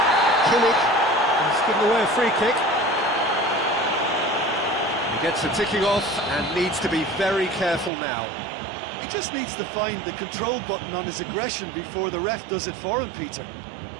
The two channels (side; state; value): left; drops out; at 7.9 s